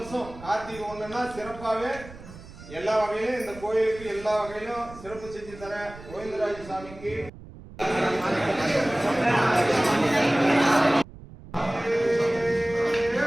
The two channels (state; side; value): noise; right; rumble, 17 dB below the sound